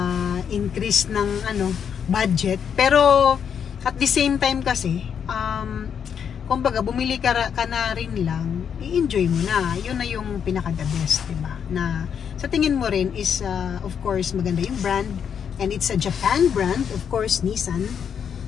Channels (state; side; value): quieter; right; 7.7 dB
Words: increase ng, budget. Pero, at the same time kasi, kumbaga, bumili ka na rin lang, i-enjoy mo na. Yun na yung pinaka-the best, diba? Na, sa tingin mo rin is, of course, maganda yung brand. And it's a Japan brand, of course, Nissan.